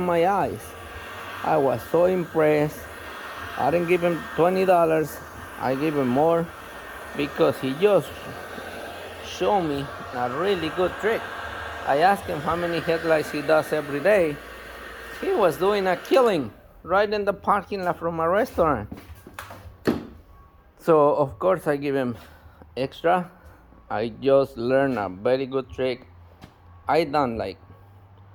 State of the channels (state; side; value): identical; both; correlation 1.00